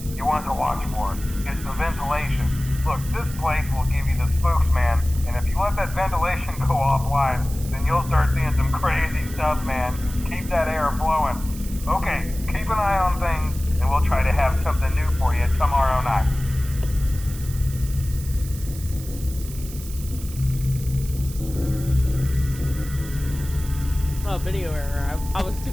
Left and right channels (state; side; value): noise; right; hiss, 15 dB below the sound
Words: you want to watch for is the ventilation. Look, this place will give you the spooks, man. And if you let that ventilation go offline, then you'll start seeing some crazy stuff, man. Keep that air flowing. Okay, keep an eye on things, and we'll try to have something new for you tomorrow night. Oh, video error. I was too